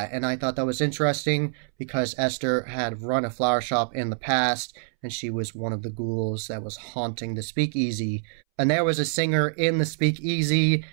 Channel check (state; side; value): silent; left; 61 dB below the other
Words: and I thought that was interesting because Esther had run a flower shop in the past, and she was one of the ghouls that was haunting the Speakeasy. And there was a singer in the Speakeasy,